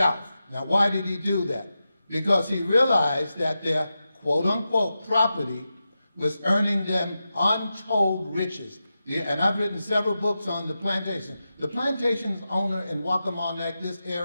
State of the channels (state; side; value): inverted; both; correlation -0.91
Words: Now, why did he do that? Because he realized that their quote-unquote property was earning them untold riches. Yeah, and I've written several books on the plantation. The plantation's owner in Waccamaw, this